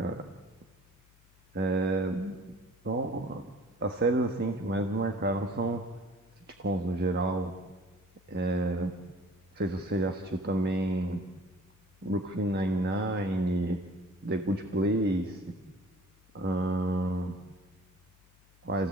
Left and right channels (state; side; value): noise; left; hum, 30 dB below the sound